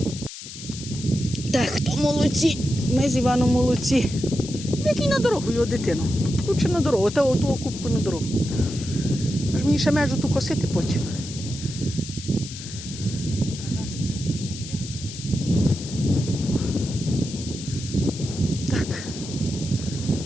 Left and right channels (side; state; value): left; noise; hiss, 12 dB below the sound